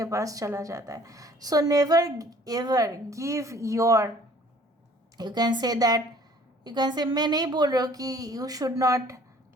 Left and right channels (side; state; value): both; normal; correlation 0.54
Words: पास चला जाता है। So never ever give your, you can say that, you can से, मैं नहीं बोल रहा हूँ कि you should not